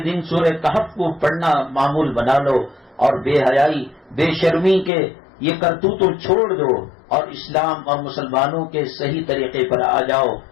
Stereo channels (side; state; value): right; drops out; at 4.9 s